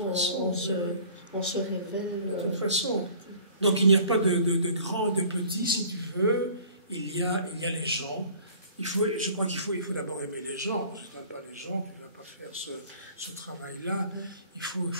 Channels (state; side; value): inverted; both; correlation -0.49